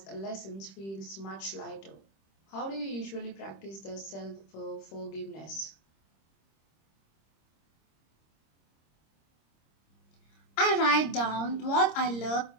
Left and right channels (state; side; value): late; right; 26 ms